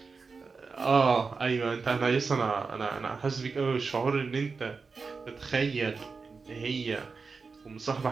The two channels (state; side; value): quieter; left; 4.7 dB